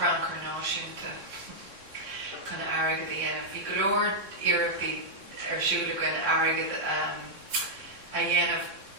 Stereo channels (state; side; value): late; left; 3.6 ms